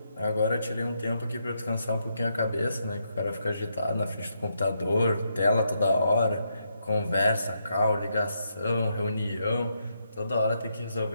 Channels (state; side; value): inverted; both; correlation -0.80